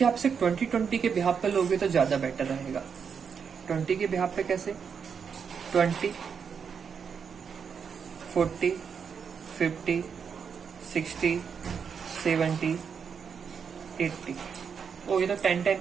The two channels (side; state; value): left; quieter; 6.6 dB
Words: आपसे 20-20 के बिहाफ पे लोगे तो ज्यादा बेटर रहेगा। 20 के बिहाफ पे कैसे, 20, 40, 50, 60, 70, 80, ओ ये तो